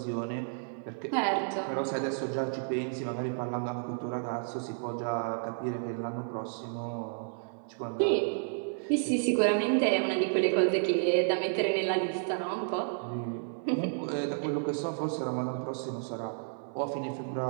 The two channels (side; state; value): left; silent; 57 dB below the other